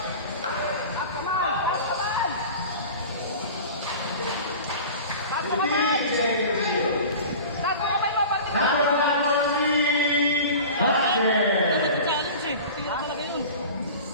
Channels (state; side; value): inverted; both; correlation -0.37